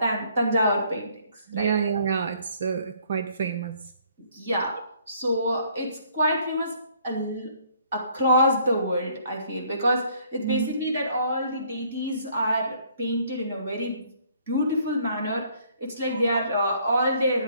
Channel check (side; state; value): both; inverted; correlation -0.62